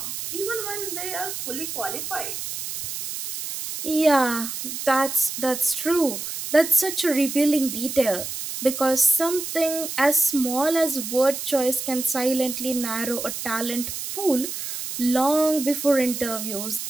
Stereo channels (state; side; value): noise; right; hiss, 6 dB below the sound